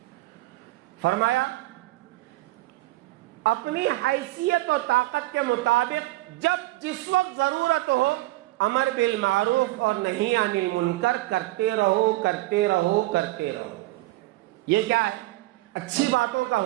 فرمایا اپنی حیثیت و طاقت کے مطابق جب جس وقت ضرورت ہو امر بالمعروف اور نہی عن المنکر کرتے رہو کرتے رہو کرتے رہو۔ یہ کیا ہے؟ اچھی باتوں کا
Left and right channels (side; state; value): left; quieter; 18.7 dB